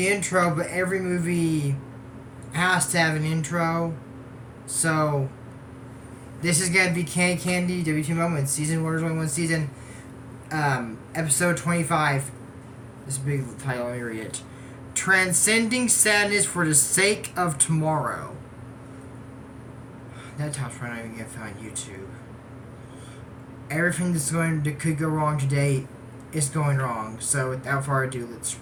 intro, but every movie has to have an intro. So this is going to be Candy WTF Moments, Season 1, there's only one season, Episode 25. This big title, let me read it. Transcending Sadness for the Sake of Tomorrow. That title's probably not even going to find YouTube. Everything that could go wrong today is going wrong. So without further ado, let's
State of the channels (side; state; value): both; identical; correlation 1.00